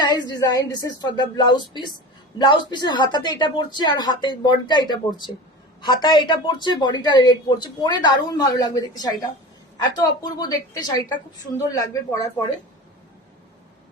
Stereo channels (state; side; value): normal; both; correlation 0.32